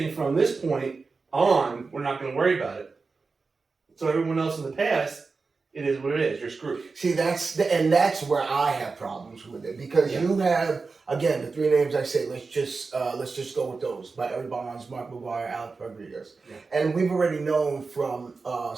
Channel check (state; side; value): quieter; left; 4.3 dB